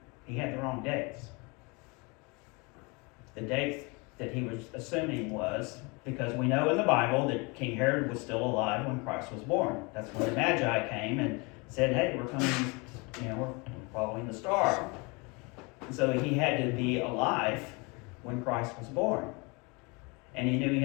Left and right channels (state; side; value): quieter; right; 28.7 dB